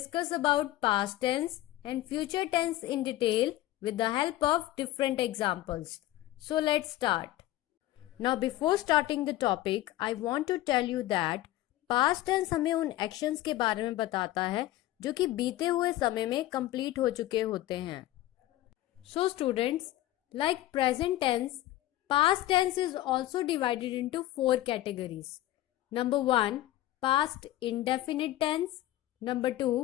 about past tense and future tense in detail with the help of different examples. So let's start. Now before starting the topic, I want to tell you that past tense हमें उन actions के बारे में बताता है जो कि बीते हुए समय में complete हो चुके होते हैं. So students, like present tense, past tense is also divided into 4 categories. Number 1, past indefinite tense. Number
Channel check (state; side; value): quieter; right; 15.4 dB